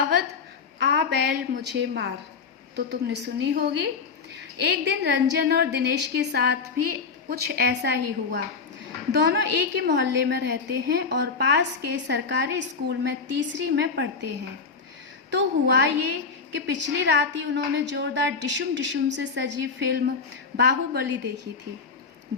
आ बैल मुझे मार तो तुमने सुनी होगी। एक दिन रंजन और दिनेश के साथ भी कुछ ऐसा ही हुआ। दोनों एक ही मोहल्ले में रहते हैं और पास के सरकारी स्कूल में तीसरी में पढ़ते हैं। तो हुआ ये कि पिछली रात ही उन्होंने जोरदार डिशुम डिशुम से सजी फिल्म बाहुबली देखी थी।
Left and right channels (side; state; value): right; quieter; 5.1 dB